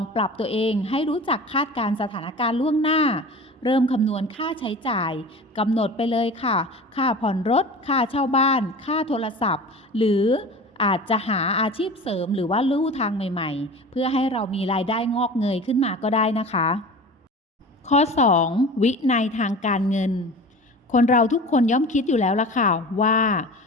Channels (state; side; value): normal; both; correlation 0.36